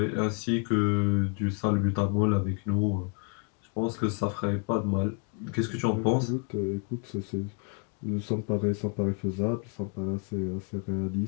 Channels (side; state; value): right; quieter; 36.6 dB